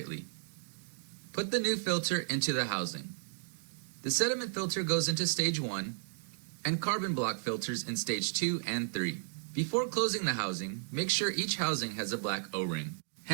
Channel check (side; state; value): left; silent; digital silence